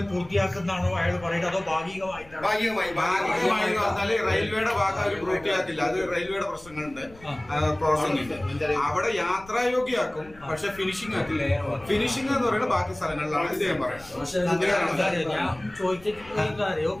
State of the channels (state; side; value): noise; left; rumble, 22 dB below the sound